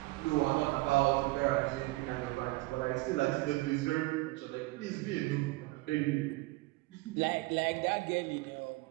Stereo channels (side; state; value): left; quieter; 22.2 dB